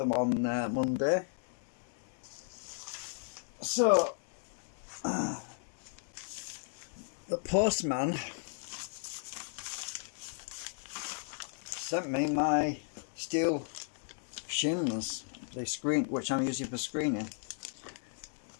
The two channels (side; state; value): right; silent; digital silence